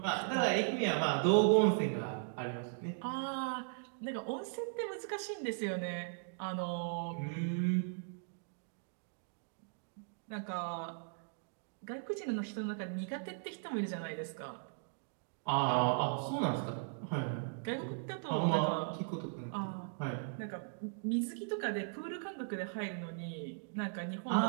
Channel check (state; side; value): silent; left; digital silence